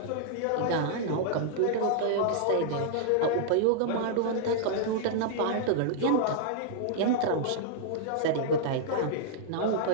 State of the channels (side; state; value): both; different; correlation -0.02